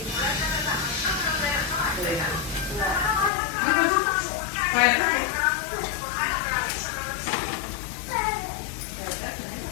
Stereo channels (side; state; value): right; drops out; at 3.3 s